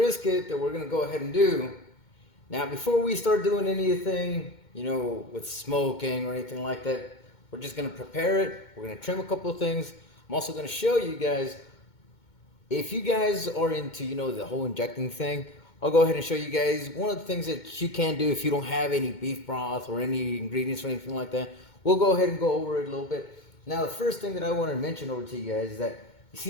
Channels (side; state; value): right; late; 2.2 ms